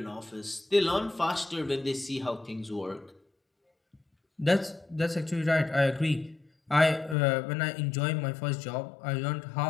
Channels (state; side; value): drops out; right; at 7.2 s